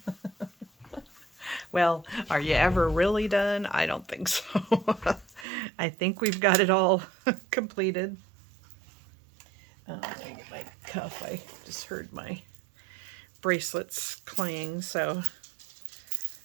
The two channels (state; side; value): drops out; left; at 5.5 s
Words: Well, are you ever really done? I don't think so. I think we've got it all completed. Let me get my cuff. I just heard my bracelets clang, so